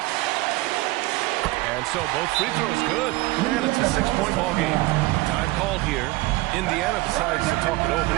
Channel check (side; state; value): left; quieter; 20.2 dB